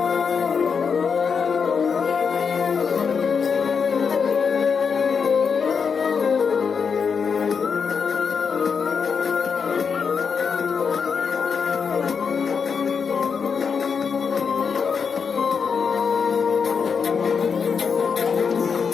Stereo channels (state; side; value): quieter; right; 6.0 dB